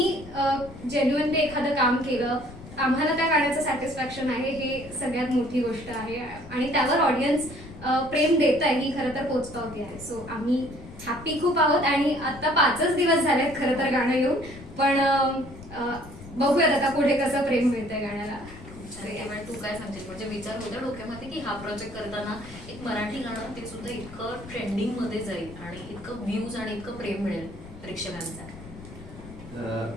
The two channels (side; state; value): left; noise; rumble, 16 dB below the sound